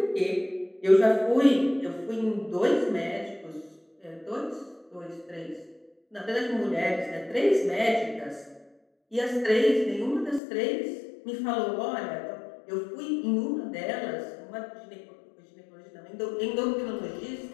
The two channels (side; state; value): right; drops out; at 10.4 s